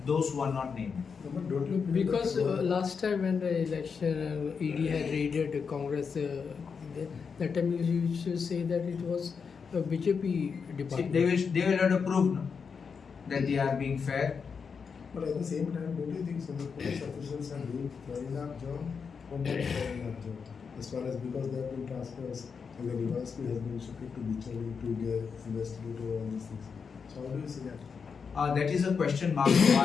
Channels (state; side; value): quieter; right; 5.8 dB